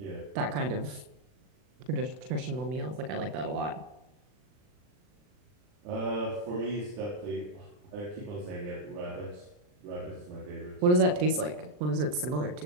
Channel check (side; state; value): left; late; 39 ms